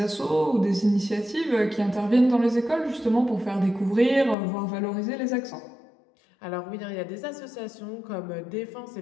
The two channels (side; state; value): right; drops out; at 4.4 s